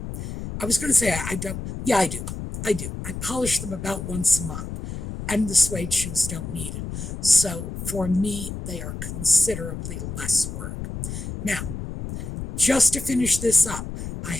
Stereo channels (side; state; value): left; noise; rumble, 7 dB below the sound